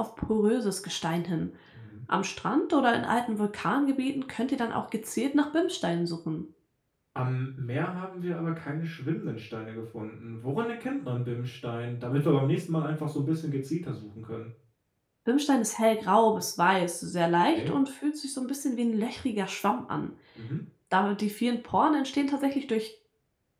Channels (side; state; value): both; identical; correlation 1.00